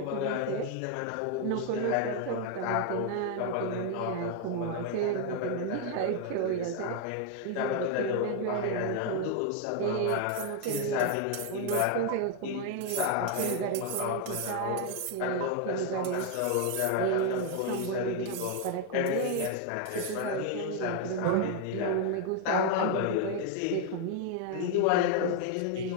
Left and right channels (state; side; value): different; both; correlation 0.01